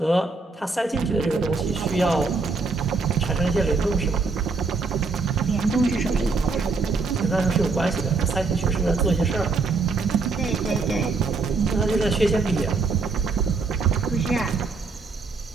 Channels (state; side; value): quieter; left; 4.2 dB